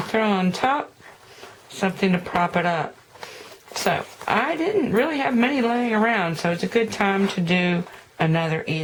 throw on top, something to prop it up. So I didn't really have many laying around, so it's a good time to do another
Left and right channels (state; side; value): identical; both; correlation 1.00